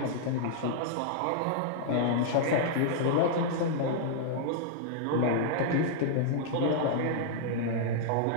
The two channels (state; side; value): different; both; correlation -0.01